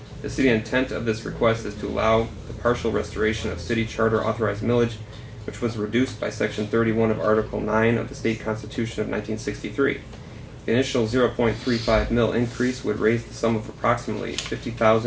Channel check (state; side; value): identical; both; correlation 1.00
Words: The city intent of this request is to allow the partial restoration of city charter authorized millage, which was reduced by Section 31 of Article 9 of the State Constitution of 1963. The initial 0.35 mil increase would raise the sum of approximately